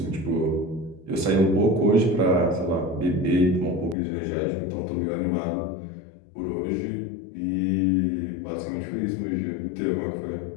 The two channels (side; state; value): right; drops out; at 4.0 s